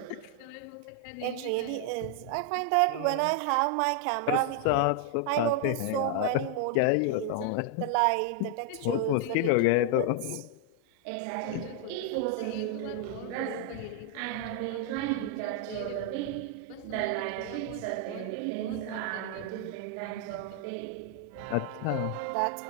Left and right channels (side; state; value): both; different; correlation 0.00